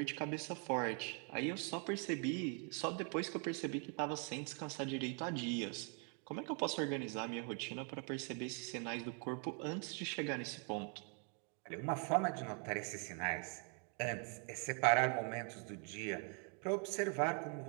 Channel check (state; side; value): quieter; left; 39.5 dB